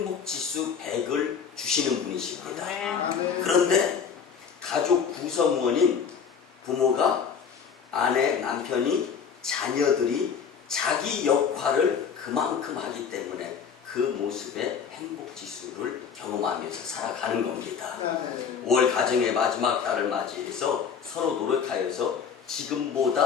100을 주시는 분이십니다. 그런데 가족 구성원인 부모가 아내, 남편이, 자녀들이 자기 역할을 그만큼 하기 때문에 그 모습의 행복지수를 경험하면서 살아가는 겁니다. 5월 가정의 마지막 달을 맞이해서 서로 노력하여서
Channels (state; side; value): quieter; right; 6.8 dB